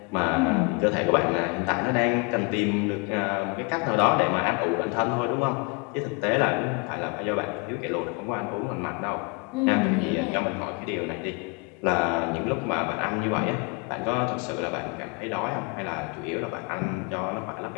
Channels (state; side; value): quieter; right; 30.4 dB